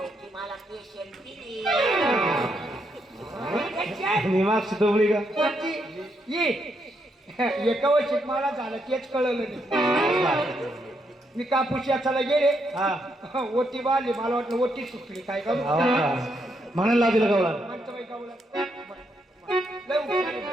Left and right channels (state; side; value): normal; both; correlation 0.78